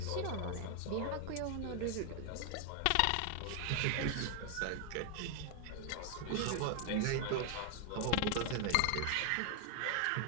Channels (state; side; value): different; both; correlation 0.00